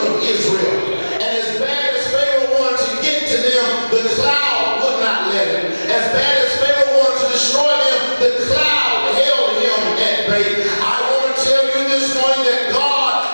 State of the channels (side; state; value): both; inverted; correlation -1.00